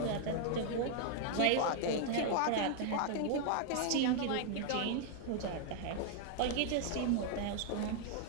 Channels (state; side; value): different; both; correlation 0.00